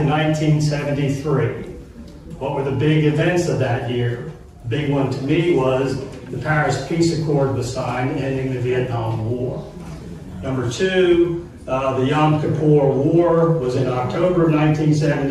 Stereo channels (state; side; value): identical; both; correlation 1.00